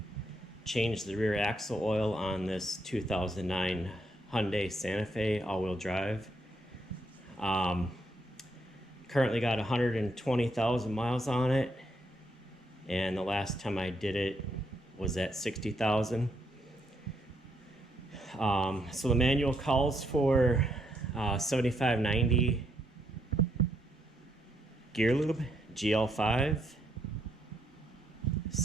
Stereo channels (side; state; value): both; normal; correlation 0.76